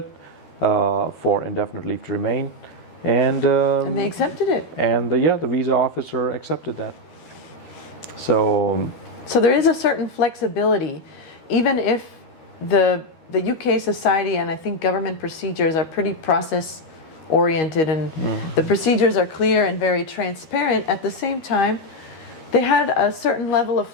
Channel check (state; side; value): late; right; 13 ms